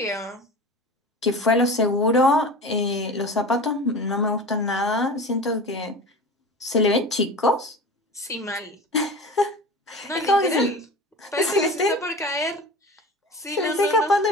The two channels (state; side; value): normal; both; correlation 0.33